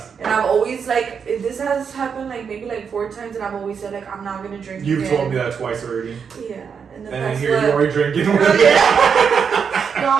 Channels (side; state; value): left; quieter; 6.6 dB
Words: And I've always, like, this has happened, like, maybe, like, 4 times. And I've always said, like, I'm not going to drink You've again. told me that twice already. Yeah. And then, And then that's here what... you are drinking. Oh, yeah. No,